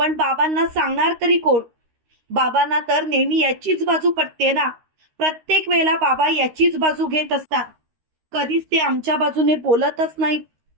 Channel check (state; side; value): late; left; 13 ms